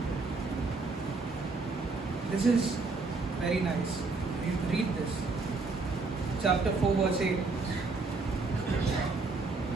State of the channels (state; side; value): quieter; left; 3.9 dB